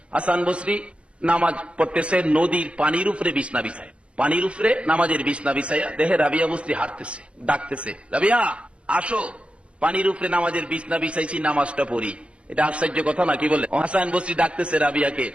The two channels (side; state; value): left; late; 0.060 ms